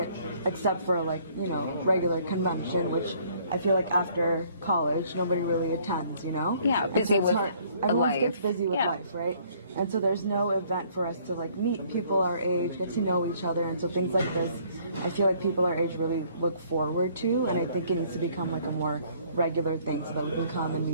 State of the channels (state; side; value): inverted; both; correlation -0.61